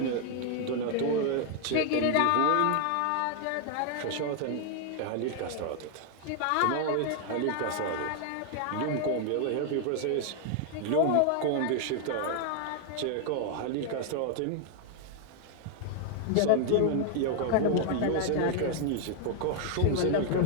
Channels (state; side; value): different; both; correlation 0.00